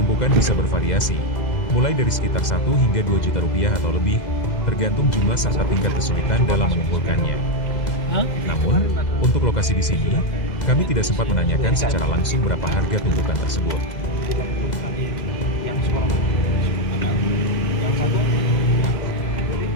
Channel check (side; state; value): right; late; 2.0 ms